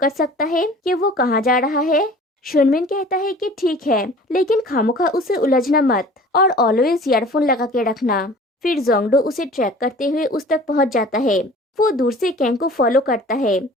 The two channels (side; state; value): both; normal; correlation 0.46